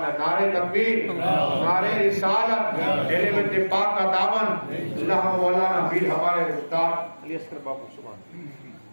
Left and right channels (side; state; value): both; inverted; correlation -1.00